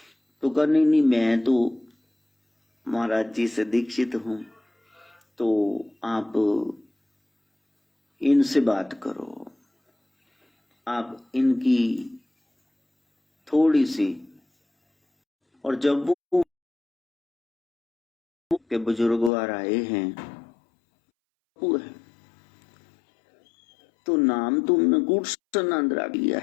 तो कहा नहीं नहीं, मैं तो महाराज जी से दीक्षित हूं, तो आप इनसे बात करो, आप इनकी थोड़ी सी। और जब वो के बुजुर्ग आए हैं है, तो नाम तुमने गुड़सनंदरा लिया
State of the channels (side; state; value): right; drops out; at 19.3 s